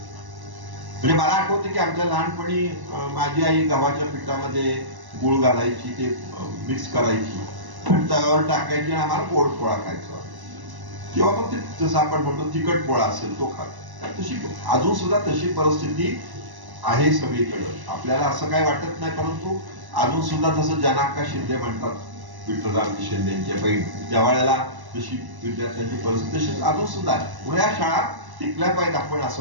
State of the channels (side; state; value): left; late; 1.1 ms